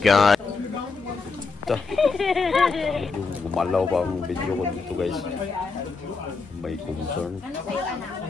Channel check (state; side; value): quieter; right; 4.4 dB